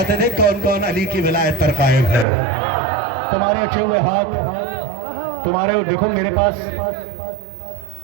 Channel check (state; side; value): drops out; left; at 2.2 s